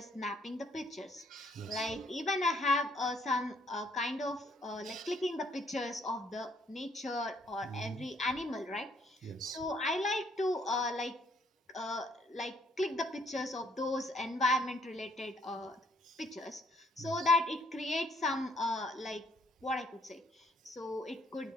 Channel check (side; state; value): both; normal; correlation 0.66